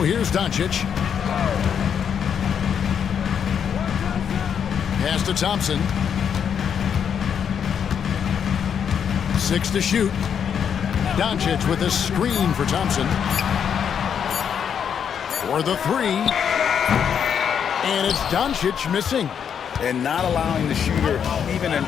here's Doncic. Pass to Thompson. 6 to shoot. Doncic with a screen for Thompson. For the 3. And it's Doncic missing. And not allowing the shooter even an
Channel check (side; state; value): right; quieter; 7.8 dB